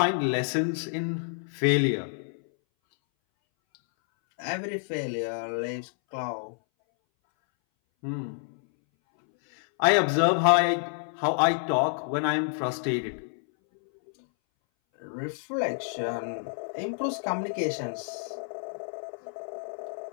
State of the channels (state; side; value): silent; right; 59 dB below the other